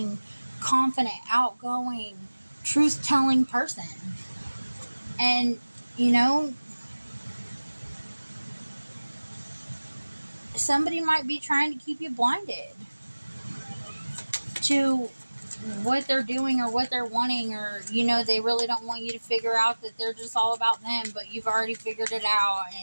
confident, outgoing, truth-telling person. And you know, somebody might be trying to keep you blinded to what they're doing or what they're wanting, or, you know, they really don't want you to figure out that they're just all about them, but you've already figured it out.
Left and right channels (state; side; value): inverted; both; correlation -1.00